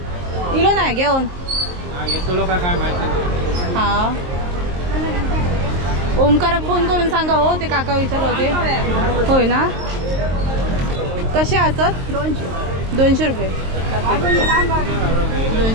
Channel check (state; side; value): late; left; 23 ms